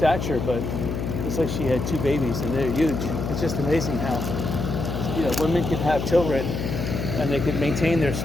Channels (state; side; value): noise; left; hum, 3 dB below the sound